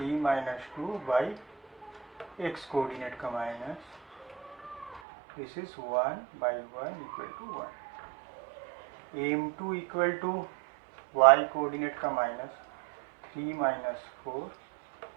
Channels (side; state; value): left; drops out; at 5.0 s